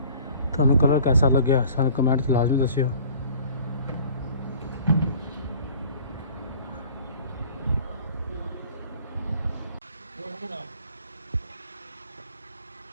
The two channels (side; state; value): both; inverted; correlation -0.48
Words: तुहानू कलर कैसा लग्या सानू कमेंट च लाजमी दस्सियो।